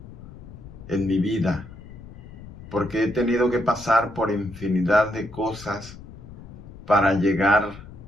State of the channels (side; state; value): left; noise; rumble, 16 dB below the sound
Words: en mi vida, porque he tenido que pasar por infinidad de cosas para llegar